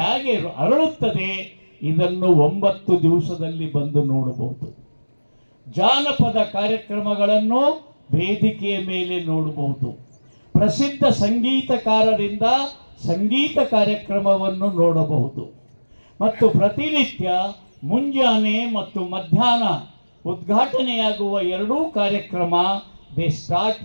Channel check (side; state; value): both; inverted; correlation -1.00